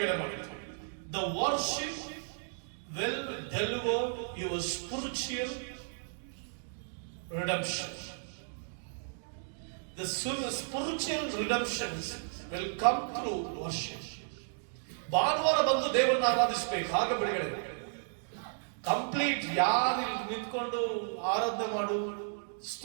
ಮಾಡುತ್ತೆ. The worship will deliver your spiritual redemption. The spiritual redemptions will come through worship. ಭಾನುವಾರ ಬಂದು ದೇವರನ್ನ ಆರಾಧಿಸಬೇಕು, ಆಗ ಬಿಡುಗಡೆ. ಕಂಪ್ಲೀಟ್ ಯಾರು ನಿಂತ್ಕೊಂಡು ಆರಾಧನೆ ಮಾಡು,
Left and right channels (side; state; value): left; silent; digital silence